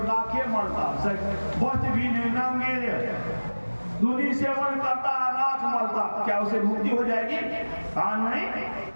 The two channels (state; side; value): inverted; both; correlation -1.00